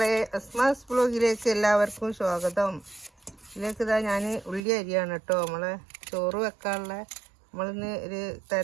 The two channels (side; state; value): left; drops out; at 4.6 s